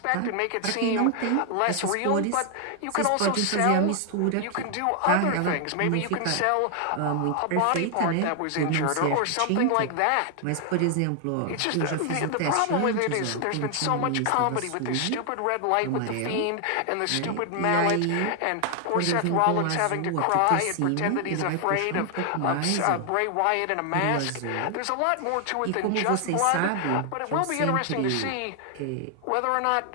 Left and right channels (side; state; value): both; different; correlation 0.00